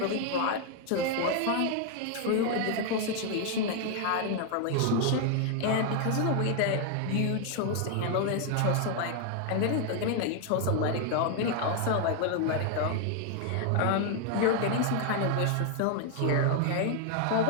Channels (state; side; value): different; both; correlation 0.00